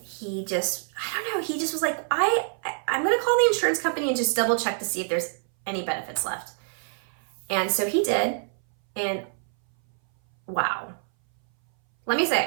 he just was like, I'm going to call the insurance company and just double check to see if there's any benefits left. And so he did. And wow, let me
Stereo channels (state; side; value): silent; left; 59 dB below the other